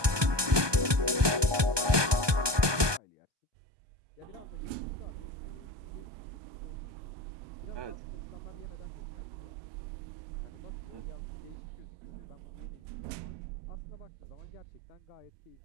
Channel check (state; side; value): late; left; 1.2 ms